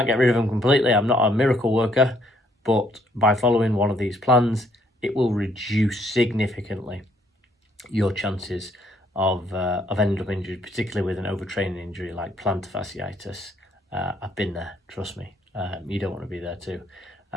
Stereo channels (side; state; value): both; normal; correlation 0.68